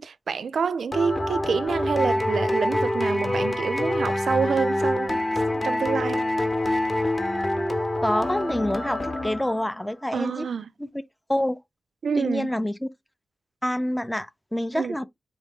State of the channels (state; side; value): normal; both; correlation 0.93